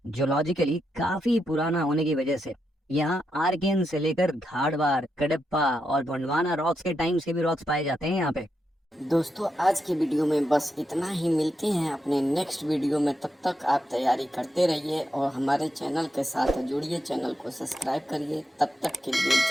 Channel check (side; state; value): both; normal; correlation 0.84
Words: जियोलॉजिकली काफी पुराना होने की वजह से यहाँ आर्कियन से लेकर धारवाड़, कडप्पा और गोंडवाना रॉक्स के टाइम्स के भी रॉक्स पाए जाते हैं यहाँ पे। दोस्तों आज की वीडियो में बस इतना ही। मिलते हैं अपने नेक्स्ट वीडियो में, तब तक आप तैयारी करते रहिए और हमारे चैनल के साथ जुड़िए, चैनल को सब्सक्राइब करिए। तब तक के लिए